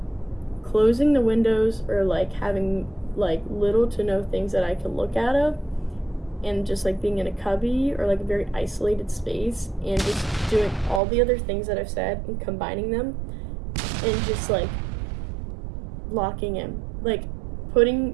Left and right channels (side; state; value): left; drops out; at 11.0 s